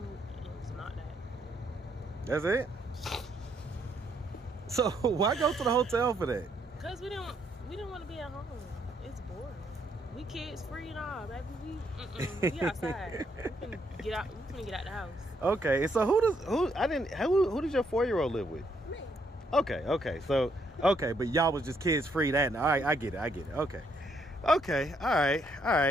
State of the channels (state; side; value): normal; both; correlation 0.72